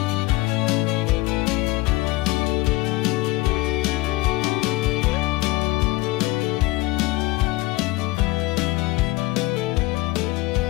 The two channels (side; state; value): right; quieter; 20.4 dB